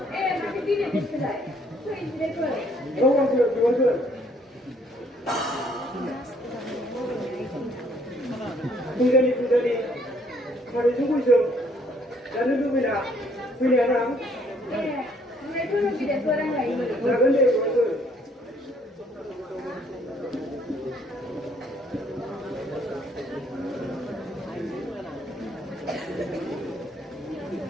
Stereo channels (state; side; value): normal; both; correlation 0.64